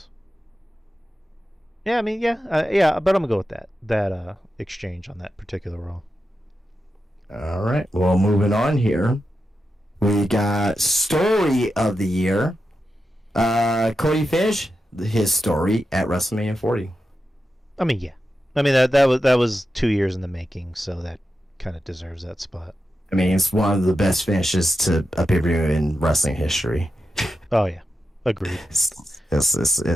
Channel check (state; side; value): normal; both; correlation 0.90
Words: Yeah, I mean, yeah, but I'm gonna go with that exchange on that particular Raw. All right. Well, moving on here. We got story of the year. Cody finished his story at WrestleMania 40. I mean, yeah. I mean that was 2 years in the making, so that kind of deserves that spot. I mean, it's one of the best finishes to a pay-per-view in wrestling history. Oh yeah, agreed.